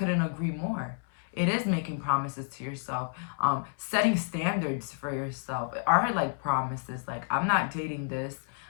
agree more. It is making promises to yourself. Setting standards for yourself are like promises. Like, I'm not dating this.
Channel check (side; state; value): right; silent; 58 dB below the other